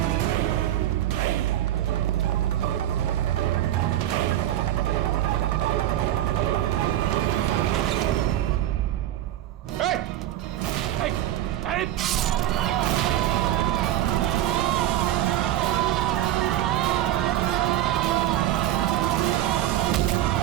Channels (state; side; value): quieter; left; 13.2 dB